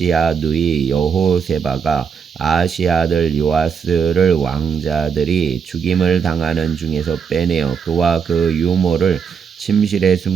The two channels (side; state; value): left; quieter; 6.5 dB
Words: 누이 여호세바가 아하시야 아들 요아스를 왕자들이 죽임을 당하는 중에서 빼내어 그와 그 유모를 침실에